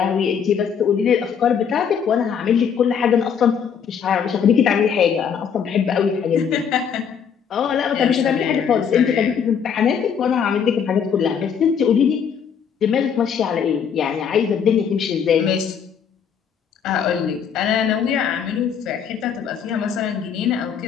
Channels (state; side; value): quieter; right; 7.4 dB